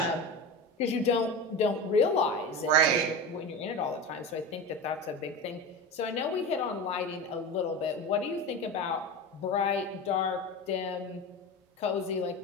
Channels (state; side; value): normal; both; correlation 0.26